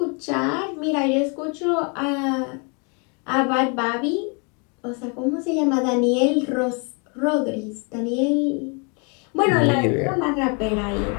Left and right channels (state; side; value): quieter; right; 34.6 dB